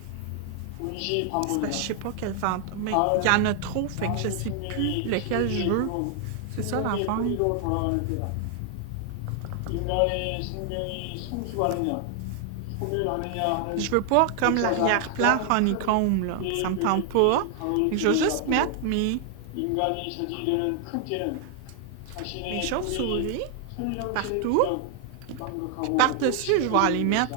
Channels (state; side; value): different; both; correlation 0.00